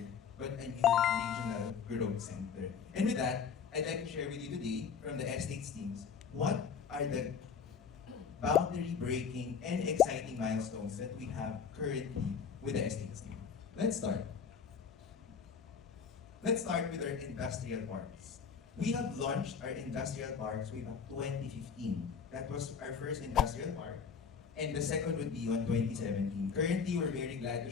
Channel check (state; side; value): quieter; right; 6.4 dB